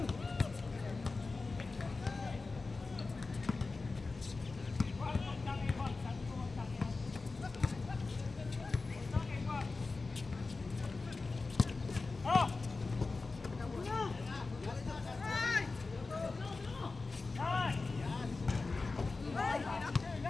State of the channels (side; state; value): right; quieter; 3.8 dB